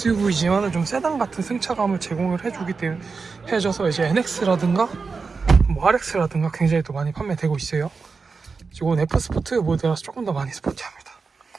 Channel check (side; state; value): left; quieter; 4.7 dB